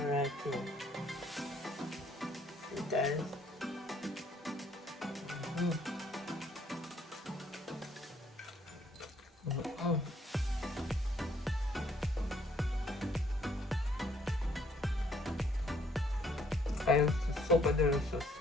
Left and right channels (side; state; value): both; normal; correlation 0.65